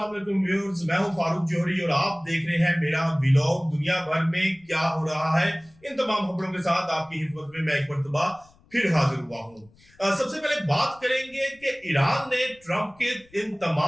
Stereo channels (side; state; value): left; noise; rumble, 29 dB below the sound